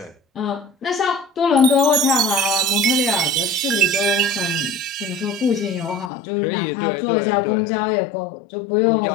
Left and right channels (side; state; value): right; drops out; at 6.1 s